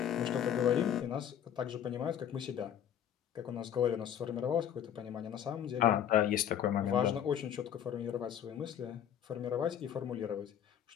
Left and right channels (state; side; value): quieter; right; 9.6 dB